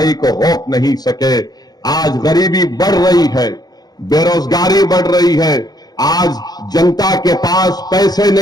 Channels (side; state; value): right; late; 0.19 ms